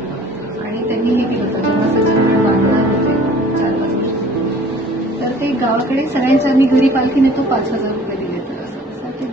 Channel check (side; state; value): both; normal; correlation 0.50